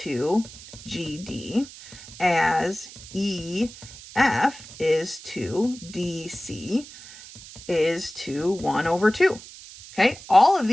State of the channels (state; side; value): noise; right; hiss, 17 dB below the sound